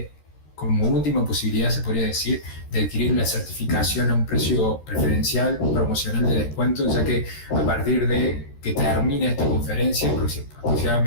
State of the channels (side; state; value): right; late; 13 ms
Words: como última posibilidad se podría decir, de adquirir la certificación a un precio preferencial, promocional de descuento, ya que a partir de que termine esta conferencia,